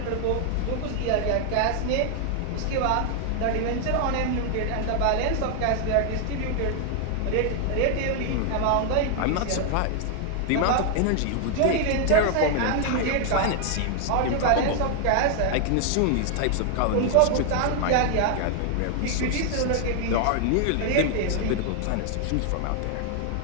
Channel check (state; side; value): different; both; correlation 0.00